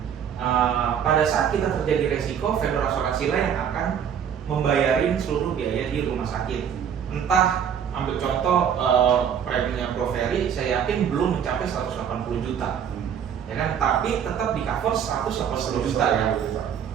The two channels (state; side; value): quieter; left; 8.2 dB